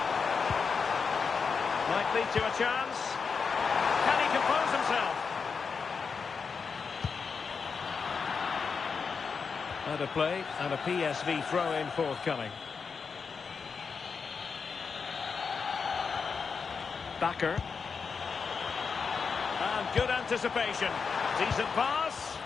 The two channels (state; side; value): quieter; right; 5.5 dB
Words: Might lead to a chance. Can he compose himself? And a play and a PSV throw-in forthcoming. Backer. And good anticipation. Decent pass.